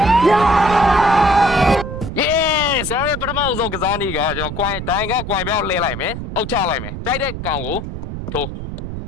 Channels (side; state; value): right; noise; rumble, 8 dB below the sound